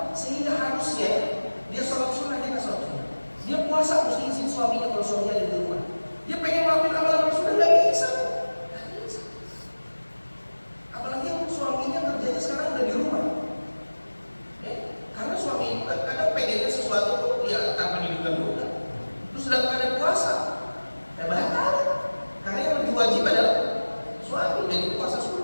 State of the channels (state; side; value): inverted; both; correlation -1.00